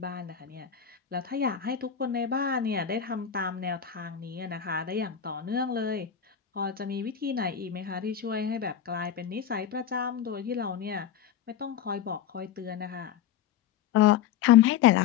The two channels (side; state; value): right; quieter; 9.1 dB